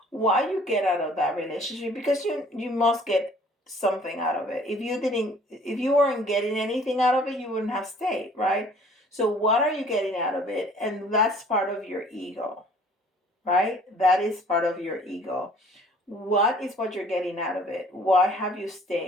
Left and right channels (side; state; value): both; normal; correlation 0.54